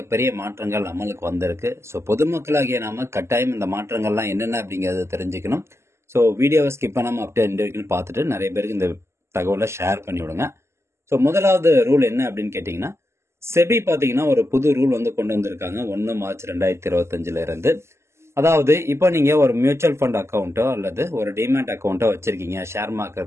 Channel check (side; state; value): left; late; 0.13 ms